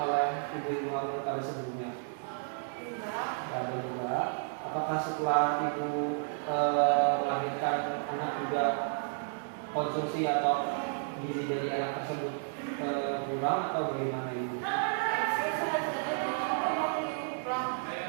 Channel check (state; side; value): silent; left; digital silence